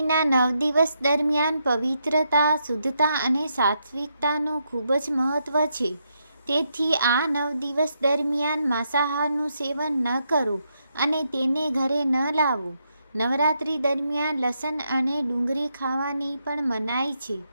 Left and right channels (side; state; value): both; inverted; correlation -0.80